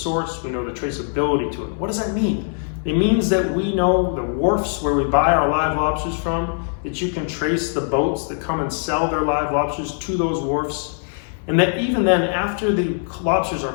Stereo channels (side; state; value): right; silent; digital silence